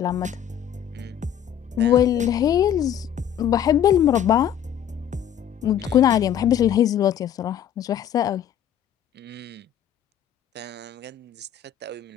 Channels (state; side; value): quieter; right; 9.7 dB